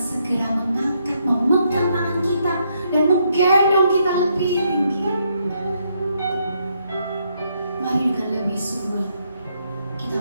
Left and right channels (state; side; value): inverted; both; correlation -0.75